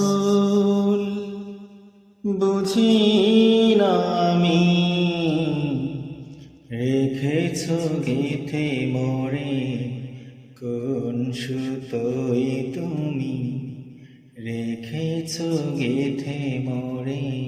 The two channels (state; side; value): identical; both; correlation 1.00